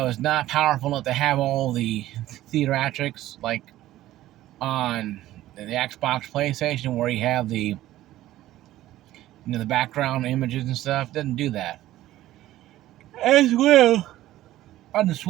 not powerful enough to have all the theatrics like on the Xbox, PlayStation, where you have the background images and stuff. It doesn't do that. As well on the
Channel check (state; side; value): quieter; left; 14.7 dB